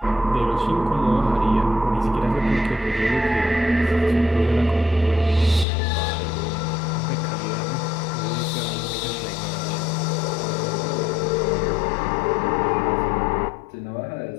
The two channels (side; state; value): right; drops out; at 5.7 s